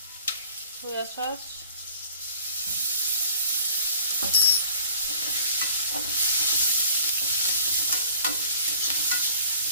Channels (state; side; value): inverted; both; correlation -0.50